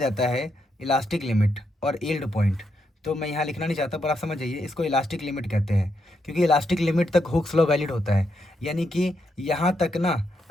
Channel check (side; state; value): both; normal; correlation 0.81